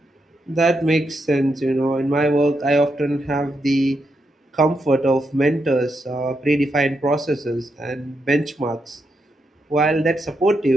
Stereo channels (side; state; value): both; normal; correlation 0.82